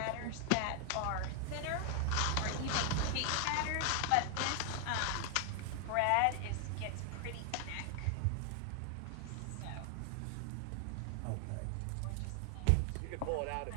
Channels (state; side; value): different; both; correlation 0.00